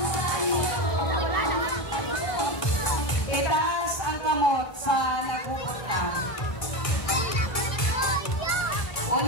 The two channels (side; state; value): right; late; 1.2 ms